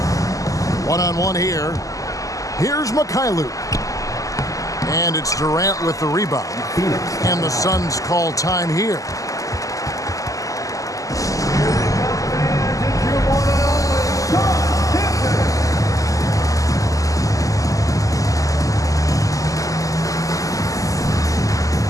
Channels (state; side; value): late; right; 0.16 ms